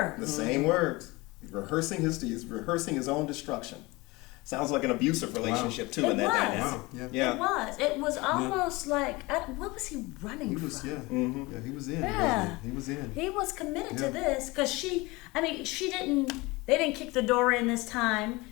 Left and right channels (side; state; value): right; quieter; 23.0 dB